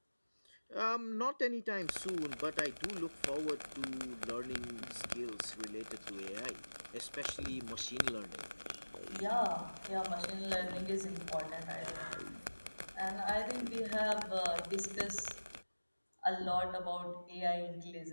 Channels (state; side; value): inverted; both; correlation -1.00